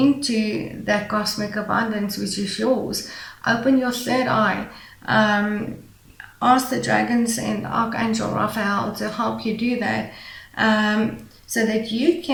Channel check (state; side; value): identical; both; correlation 1.00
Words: that cosmic abundance which is yours. Open your third eye. Ask the dragons and Archangel Raphael to help you do that, so that you